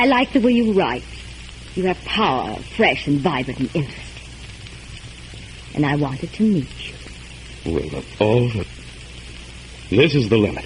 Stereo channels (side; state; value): both; identical; correlation 1.00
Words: like the way you write. You have power, fresh and vibrant and interesting. And I wanted to meet you. Well, this is the limit.